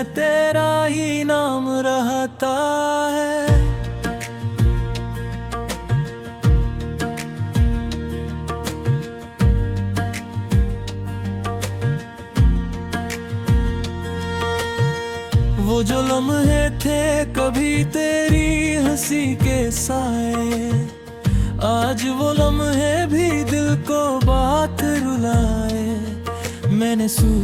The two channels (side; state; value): both; identical; correlation 1.00